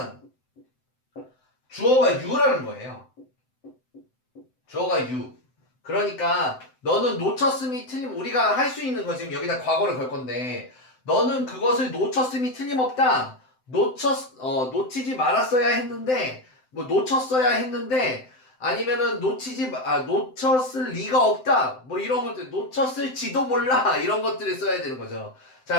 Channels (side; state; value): right; late; 7.8 ms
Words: 주어가 you라는 거예요. 주어가 you. 그러니까 너는 놓쳤음이 틀림, 우리가 할 수 있는 거 지금 여기다 과거를 걸 건데 너는 그것을 놓쳤음이 틀림없다. 놓치지 말았어야 했는데 뭐 놓쳤어야 했는데 아니면은 놓쳤을 리가 없다. 뭐 이런 것들 놓쳤을지도 몰라. 이런 것들을 써야 되는 거죠.